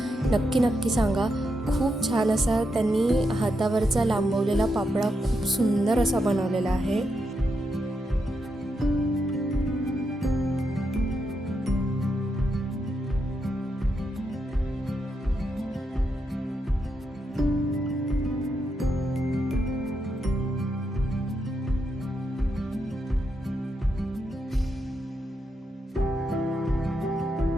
नक्की सांगा. खूप छान असा त्यांनी हातावरचा लांबवलेला पापडा खूप सुंदर असा बनवलेला आहे.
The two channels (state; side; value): normal; both; correlation 0.83